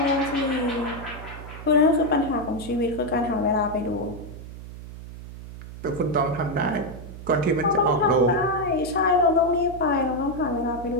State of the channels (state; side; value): noise; right; hum, 13 dB below the sound